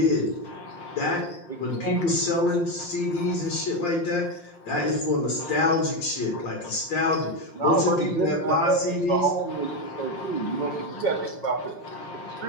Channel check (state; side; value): late; right; 5.6 ms